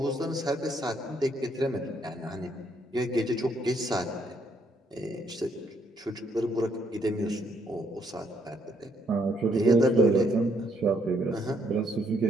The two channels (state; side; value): normal; both; correlation 0.71